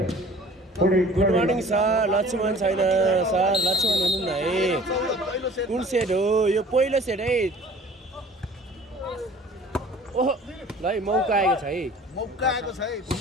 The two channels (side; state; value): both; normal; correlation 0.48